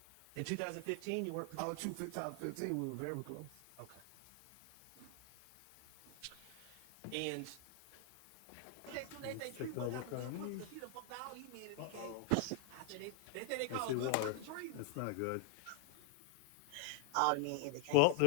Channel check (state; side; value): different; both; correlation 0.00